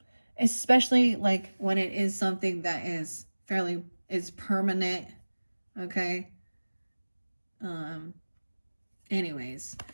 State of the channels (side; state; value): both; inverted; correlation -1.00